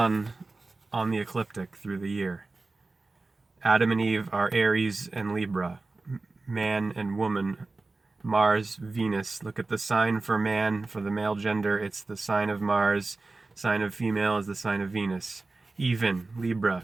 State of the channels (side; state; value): left; quieter; 3.5 dB